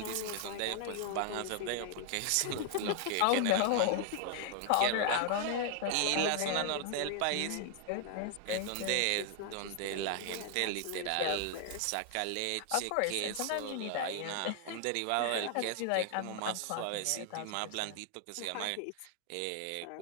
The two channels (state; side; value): different; both; correlation 0.00